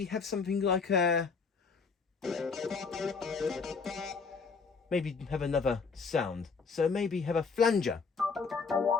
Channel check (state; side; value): quieter; right; 5.0 dB